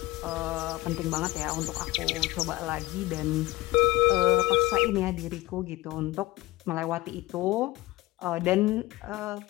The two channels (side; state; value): right; quieter; 17.9 dB